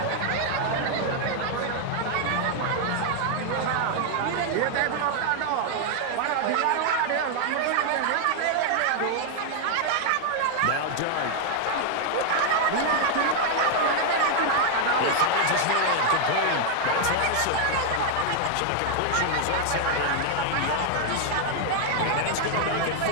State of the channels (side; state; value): both; different; correlation 0.00